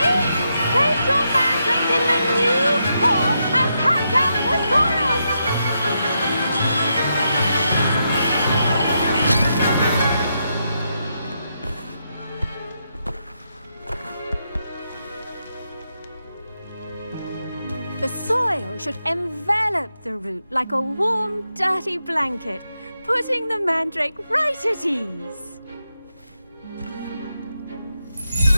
The soil should envelop the root like a warm, dirty blanket, putting the mandrake right at ease.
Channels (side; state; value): both; inverted; correlation -0.83